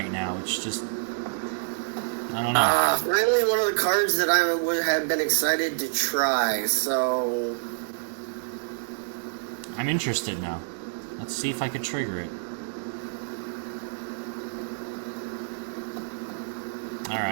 now. It's just... I don't know. Finally one of the cards that I would have been excited to try, so... I'm interested now. Let's see if I can trigger it.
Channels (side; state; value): left; silent; digital silence